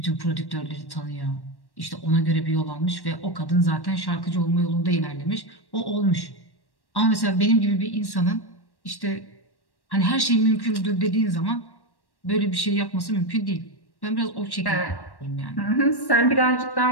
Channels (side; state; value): right; late; 1.1 ms